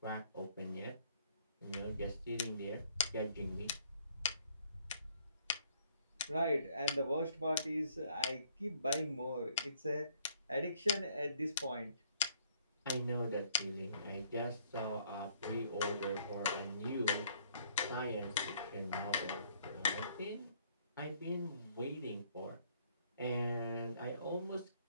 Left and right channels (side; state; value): both; inverted; correlation -0.64